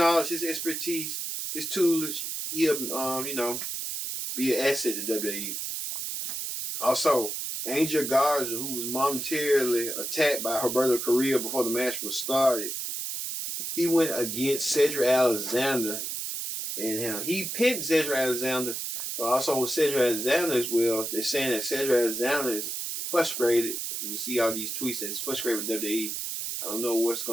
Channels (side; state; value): right; noise; hiss, 4 dB below the sound